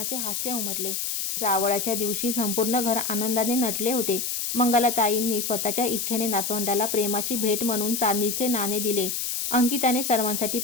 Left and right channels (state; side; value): noise; left; hiss, 2 dB below the sound